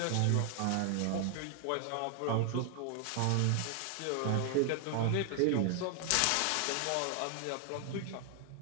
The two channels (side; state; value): both; different; correlation 0.00